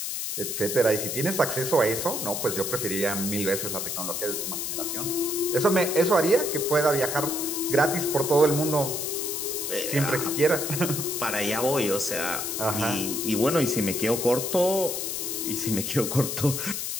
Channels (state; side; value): noise; left; hiss, 3 dB below the sound